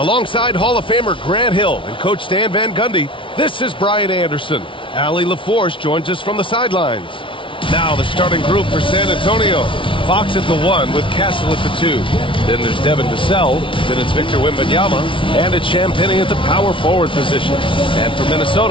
Hall of Famer Grant Hill and Coach Stan Van Gundy, this is Brian Anderson. Allie LaForce joins us from the sidelines. Now the starting group for San Antonio. Fox at the 1 with Castle at the 2. Then there's Devin Vassell. Then it's Victor Wembanyama. And it's Champagnie at the power forward position. And for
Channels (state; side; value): late; right; 0.25 ms